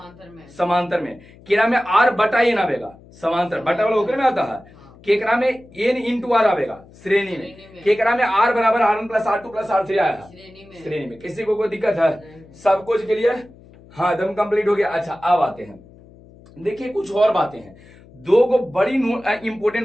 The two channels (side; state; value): left; noise; hum, 24 dB below the sound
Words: समांतर में केरा में आर बटा एन आवेगा, समांतर बटा वाला ओकर में आता है, केकरा में एन इंटू आर आवेगा श्रेणी में, केकरा में आर बराबर R1 + R2 + R3 आया है श्रेणी में। किसी को कोई दिक्कत है, सब कुछ के लिए, हाँ एकदम कंप्लीट हो गया। अच्छा अब आते हैं, देखिए कुछ और बातें हैं, दो को बड़ी इंपोर्टेंट